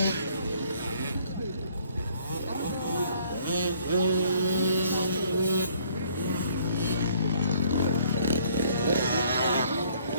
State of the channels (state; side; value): inverted; both; correlation -0.61